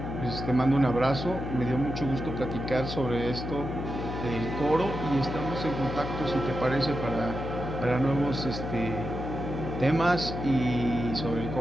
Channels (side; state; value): left; noise; hum, 6 dB below the sound